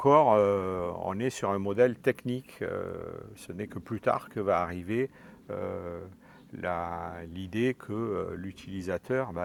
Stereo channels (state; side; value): identical; both; correlation 1.00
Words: on est sur un modèle technique. Ce n'est que plus tard que va arriver l'idée que l'utilisateur,